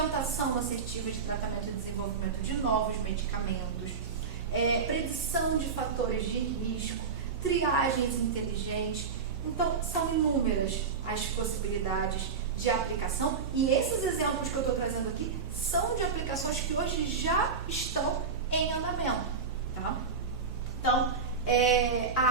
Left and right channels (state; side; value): quieter; left; 5.4 dB